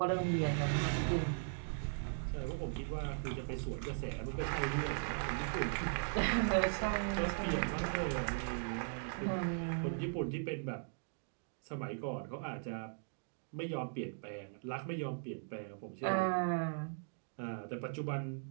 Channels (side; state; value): left; silent; digital silence